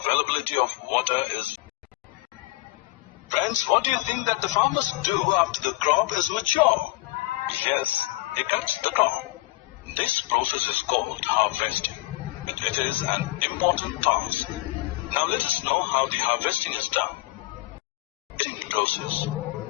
of water is. Friends, what do you think that the farmers do after the crop is mature? Yes, they cut the crop. This process is called harvesting, and it is an important task. Now let us know how the harvesting is done. Harvesting process.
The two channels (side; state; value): right; quieter; 20.4 dB